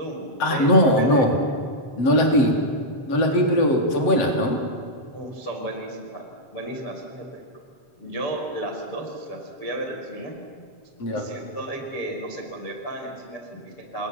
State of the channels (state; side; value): late; right; 7.7 ms